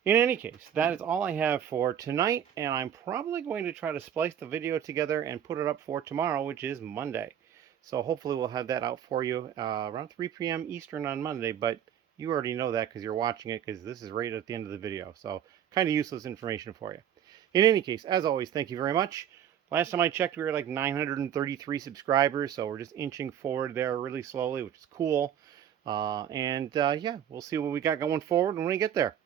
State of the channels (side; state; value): left; quieter; 9.7 dB